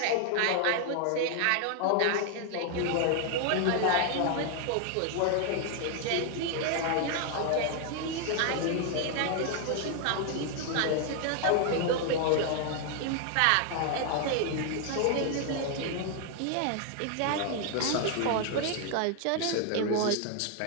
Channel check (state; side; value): different; both; correlation 0.00